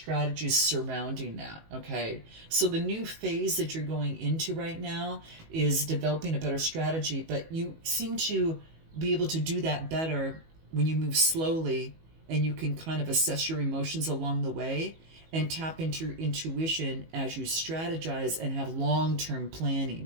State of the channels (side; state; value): left; late; 19 ms